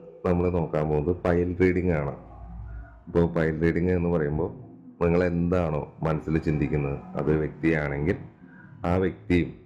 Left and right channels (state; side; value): identical; both; correlation 1.00